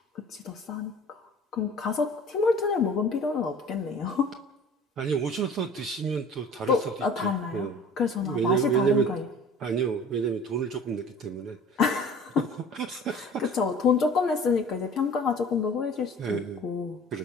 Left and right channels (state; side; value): normal; both; correlation 0.45